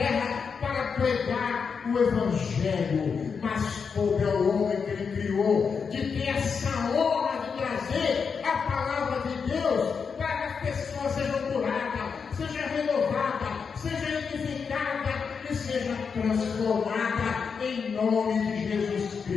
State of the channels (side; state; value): right; quieter; 5.9 dB